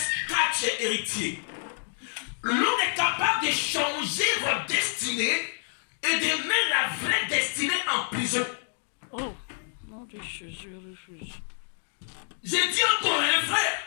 car tu es héritier. L'homme est capable de changer votre destinée et de mettre la vraie destinée en prison. Oh, non, je refuse. J'ai dit encore un frère,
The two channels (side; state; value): right; silent; 59 dB below the other